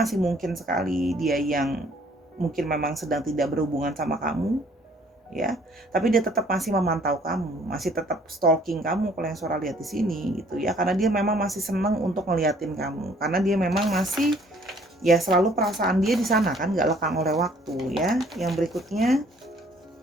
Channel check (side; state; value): both; normal; correlation 0.59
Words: mungkin sekali dia yang mungkin memang sedang tidak berhubungan sama kamu, ya, tapi dia tetap masih memantau kamu, masih tetap stalking kamu kalau yang Sora lihat di sini gitu, ya, karena dia memang masih senang untuk ngeliatin kamu, karena dia memang masih, ya, selalu perasaan dia di sana kan, nggak lekang oleh waktu, ya. Yang berikutnya,